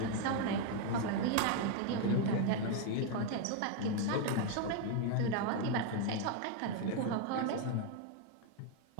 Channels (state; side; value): different; both; correlation 0.01